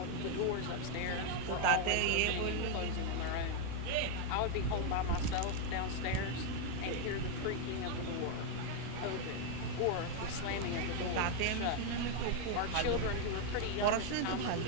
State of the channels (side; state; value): both; different; correlation 0.01